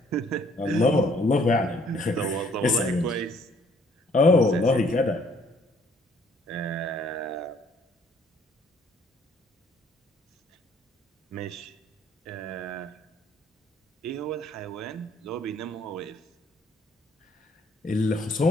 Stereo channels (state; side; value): normal; both; correlation 0.62